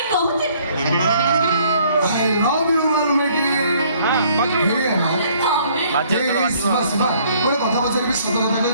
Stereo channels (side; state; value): both; inverted; correlation -0.61